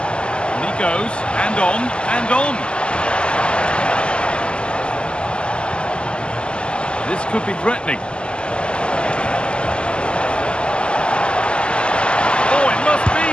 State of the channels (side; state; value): right; late; 0.051 ms